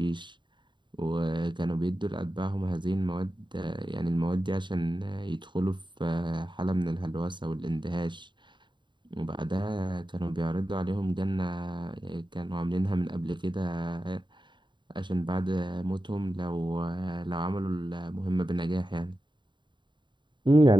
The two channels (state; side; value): late; left; 0.23 ms